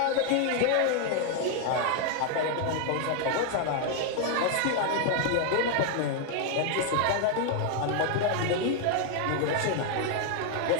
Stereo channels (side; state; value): both; different; correlation 0.00